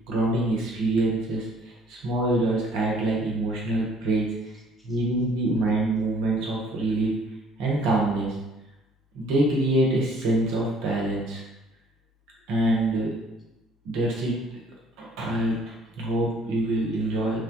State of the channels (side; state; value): both; normal; correlation 0.59